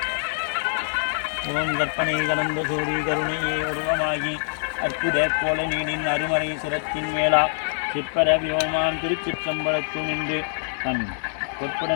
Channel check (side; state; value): right; silent; digital silence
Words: ஓம் கற்பனை கடந்த சோதி கருணையே உருவமாகி அற்புத கோல நீடின் அருமறை சிரத்தின் மேலா சிற்பர வியோமான் திருச்சிற்றம்பலத்து நின்று தன்